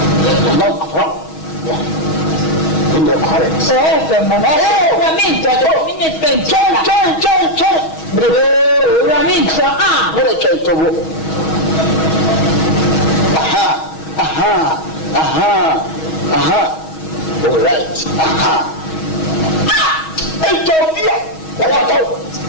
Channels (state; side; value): late; right; 6.3 ms